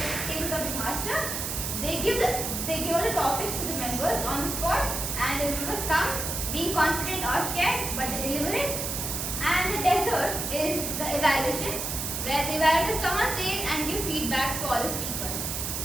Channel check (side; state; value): right; noise; hiss, 3 dB below the sound